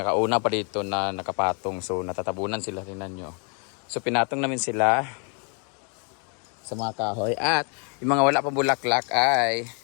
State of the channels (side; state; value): right; quieter; 39.1 dB